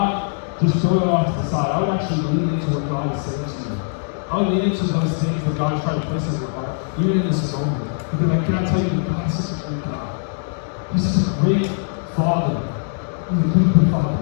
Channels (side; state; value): right; silent; digital silence